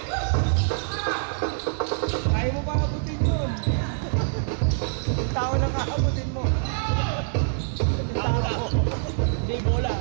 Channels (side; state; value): left; silent; digital silence